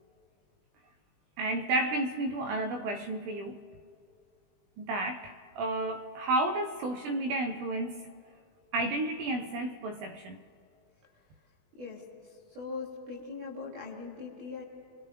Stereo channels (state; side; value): late; left; 20 ms